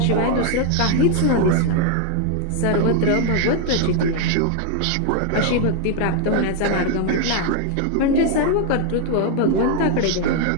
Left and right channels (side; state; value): both; different; correlation 0.01